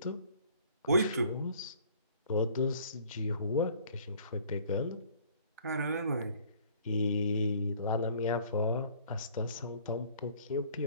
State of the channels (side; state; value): both; inverted; correlation -0.55